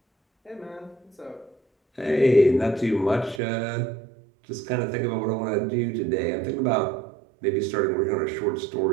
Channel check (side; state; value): left; drops out; at 3.4 s